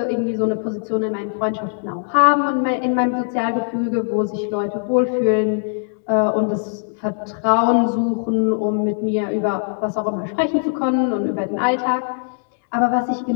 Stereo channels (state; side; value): silent; right; digital silence